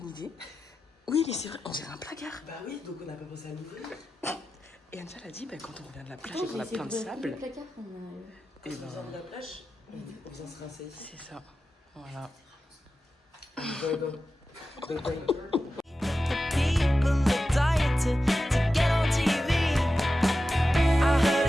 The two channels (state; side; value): normal; both; correlation 0.93